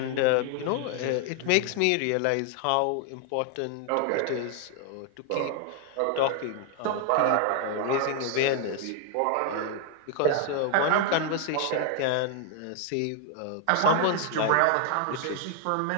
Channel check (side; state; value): both; different; correlation 0.00